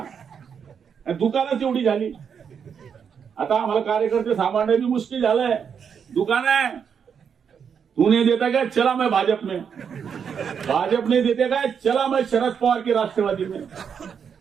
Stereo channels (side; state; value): left; quieter; 7.1 dB